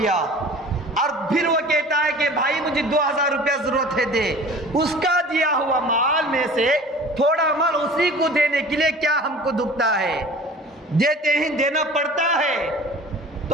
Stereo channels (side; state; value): both; normal; correlation 0.43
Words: اور پھر وہ کہتا ہے کہ بھائی مجھے 2000 روپیہ ضرورت ہے دے، اس کا دیا ہوا مال میں سے تھوڑا مال اسی کو دینے کے لیے کیا ہم کو دکھتا ہے؟ دیتے ہیں، دینا پڑتا ہے۔